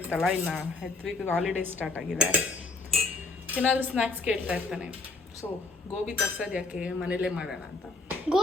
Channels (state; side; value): quieter; right; 3.4 dB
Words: ಇನ್ನು ಹೆತ್ವಿಗೆ ಹಾಲಿಡೇ ಸ್ಟಾರ್ಟ್ ಆಗಿದೆ. ಏನಾದರೂ ಸ್ನ್ಯಾಕ್ಸ್ ಕೇಳ್ತಾ ಇರ್ತಾನೆ. ಸೊ ಗೋಬಿ ತರ್ಸೋದು ಯಾಕೆ, ಮನೇಲೇ ಮಾಡೋಣ ಅಂತ.